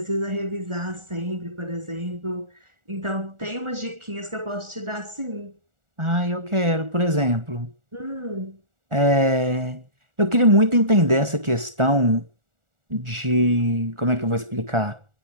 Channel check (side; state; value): left; late; 1.4 ms